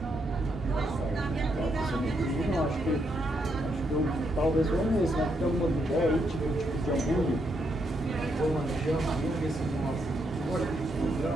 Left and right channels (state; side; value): normal; both; correlation 0.78